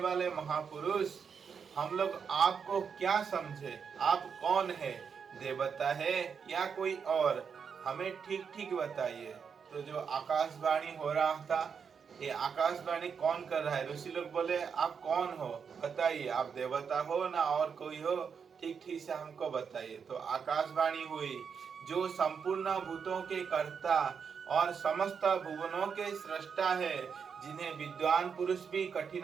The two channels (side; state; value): left; quieter; 6.5 dB